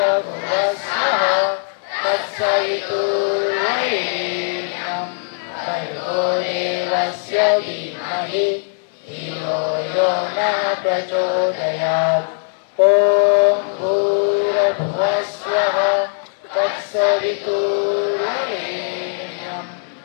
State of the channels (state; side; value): silent; right; digital silence